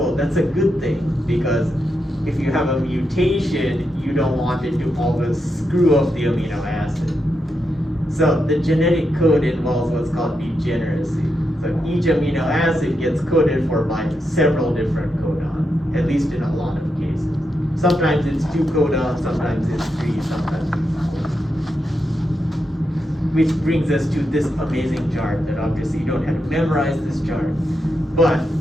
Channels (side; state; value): both; normal; correlation 0.85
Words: that's a good thing, because if you have a mutation, you don't want it to always screw up the amino acid. So the genetic code involves what's called degeneracy. So each amino acid gets coded for by several different codons, at least in a lot of cases. Sometimes it's 2 codons, sometimes it's 3, sometimes it's 4. Which brings us to this amazing chart that obviously you don't have to memorize this chart, but